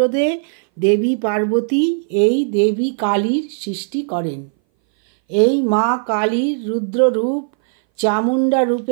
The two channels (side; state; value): left; silent; 61 dB below the other